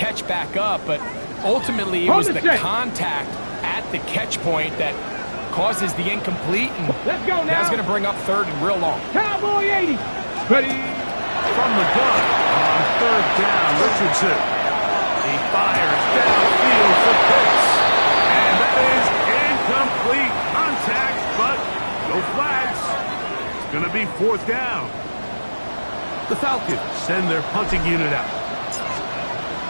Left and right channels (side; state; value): both; inverted; correlation -1.00